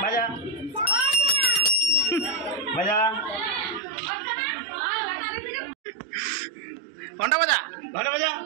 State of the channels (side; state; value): left; drops out; at 3.8 s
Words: বাজা বাজা ঘন্টা বাজা, ঘন্টা বাজা